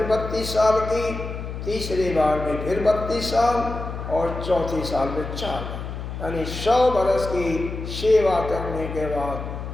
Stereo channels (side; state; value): left; noise; hum, 7 dB below the sound